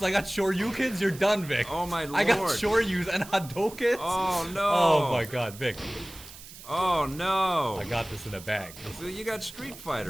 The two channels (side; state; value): right; noise; hiss, 16 dB below the sound